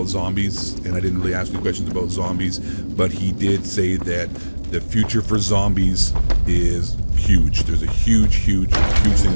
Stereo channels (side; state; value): both; inverted; correlation -1.00